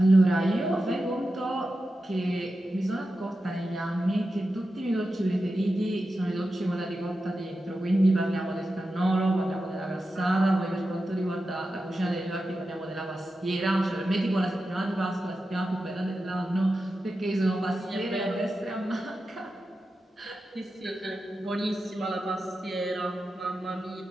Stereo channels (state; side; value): normal; both; correlation 0.91